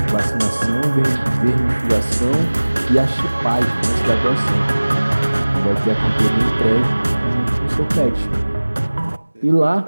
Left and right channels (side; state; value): both; inverted; correlation -1.00